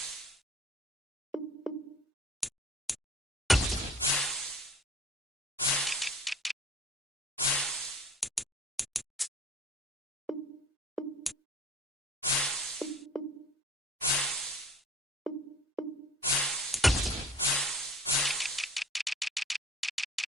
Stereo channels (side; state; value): both; normal; correlation 0.49